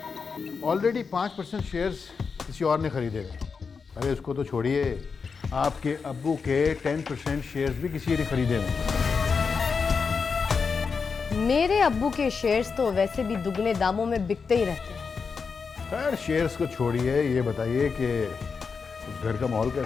ऑलरेडी 5% शेयर्स किसी और ने खरीदे हैं। अरे उसको तो छोड़िए, आपके अब्बू के 10% शेयर्स भी किसी ने खरीदे हैं। मेरे अब्बू के शेयर्स तो वैसे भी दुगने दामों में बिकते ही रहते हैं। खैर शेयर्स को छोड़िए, ये बताइए कि उस घर का माहौल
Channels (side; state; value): right; quieter; 5.3 dB